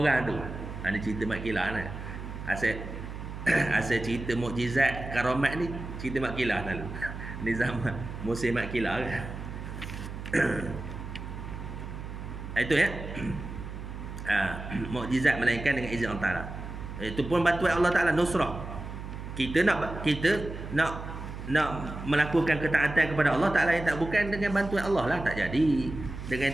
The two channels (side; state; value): right; noise; hum, 9 dB below the sound